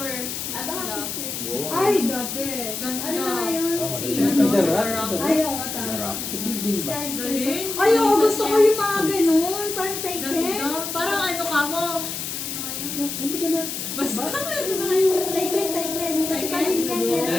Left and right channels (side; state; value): left; noise; hiss, 5 dB below the sound